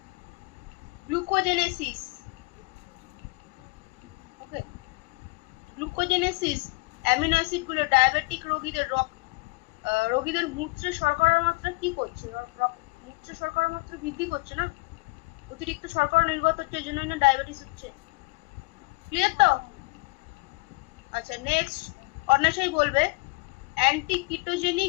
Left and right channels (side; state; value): right; quieter; 25.7 dB